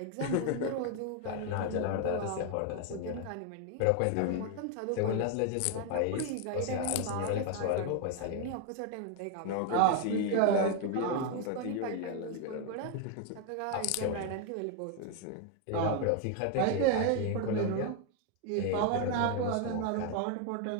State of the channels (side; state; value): both; different; correlation 0.01